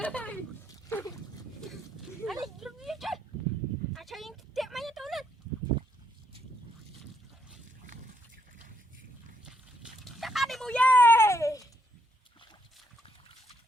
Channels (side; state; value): both; normal; correlation 0.74